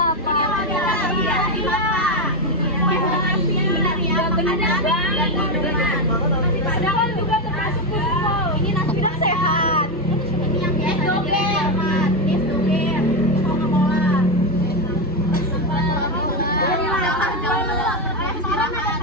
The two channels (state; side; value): normal; both; correlation 0.08